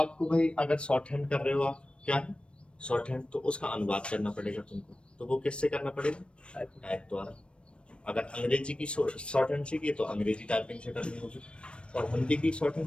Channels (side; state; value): right; late; 0.058 ms